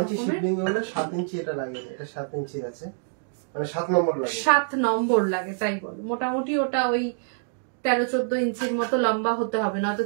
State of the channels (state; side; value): silent; left; digital silence